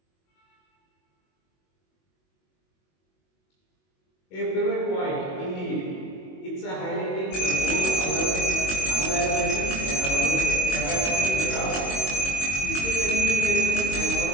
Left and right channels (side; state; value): right; late; 22 ms